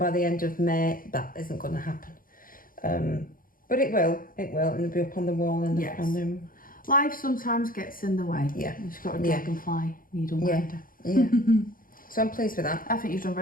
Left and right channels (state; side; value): late; right; 0.41 ms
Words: the end of May. That isn't going to happen. But it will, and it'll be up on the wall in the front room. Life sometimes gets in the way. Yeah. You've got a dragonfly needle minder. Yeah. So I'm pleased with that. I think you've done